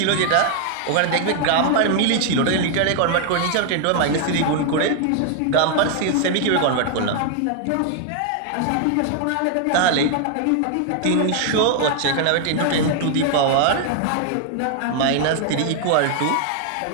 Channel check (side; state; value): both; different; correlation 0.00